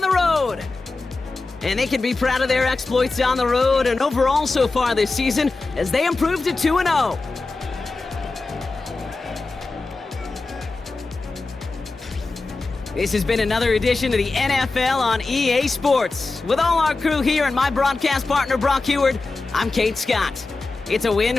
road. And they can be proud of their exploits on the road and overall so far this season as they improved to 2-0. This has been another edition of the NFL on EA Sports. With all our crew here and my broadcast partner, Brock Heward, I'm Kate Scott. It's a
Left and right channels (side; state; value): right; quieter; 3.6 dB